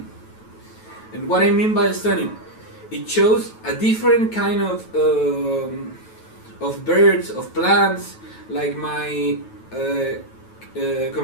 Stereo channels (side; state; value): right; late; 9.2 ms